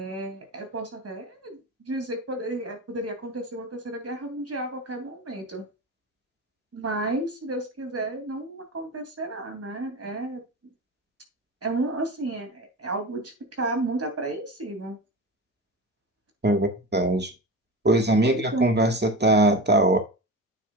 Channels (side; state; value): both; normal; correlation 0.27